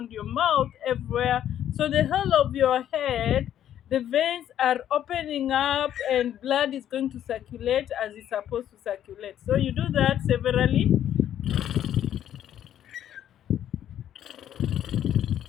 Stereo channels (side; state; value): right; quieter; 10.8 dB